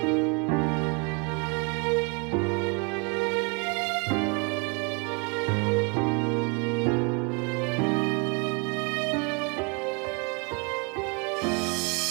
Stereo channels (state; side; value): quieter; left; 33.0 dB